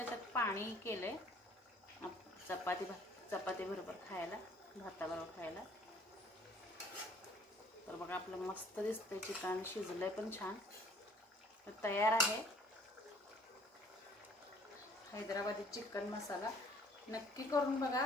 पाणी केलंय चपाती बरोबर खायला, भाताबरोबर खायला. तर बघा आपलं मस्त दिसतंय चिकन. शिजलंय पण छान. तर तयार आहे. हैदराबादी चिकन मसाला नक्की करून बघा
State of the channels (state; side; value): normal; both; correlation 0.57